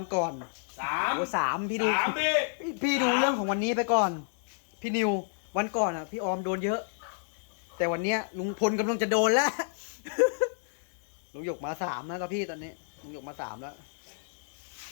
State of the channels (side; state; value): right; silent; digital silence